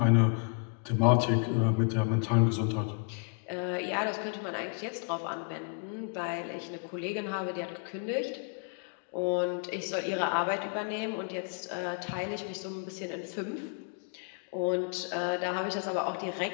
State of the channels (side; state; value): right; quieter; 39.0 dB